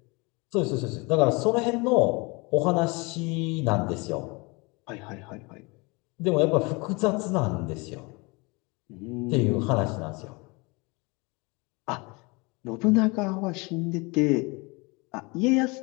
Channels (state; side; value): quieter; right; 27.4 dB